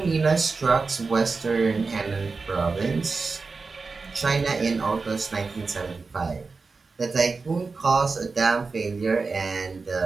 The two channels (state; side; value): quieter; left; 4.3 dB